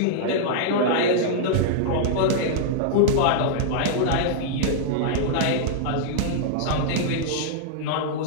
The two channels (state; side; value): different; both; correlation -0.02